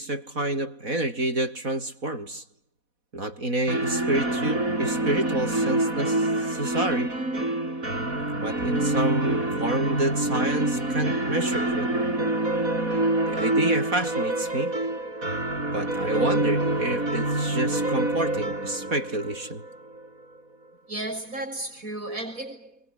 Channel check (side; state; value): left; late; 4.1 ms